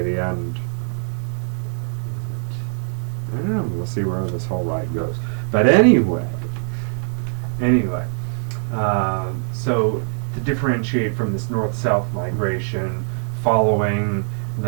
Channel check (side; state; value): left; silent; digital silence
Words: the end. I don't know. We'll see where this whole ride goes. But anyway. So to differentiate from this north-south migration, following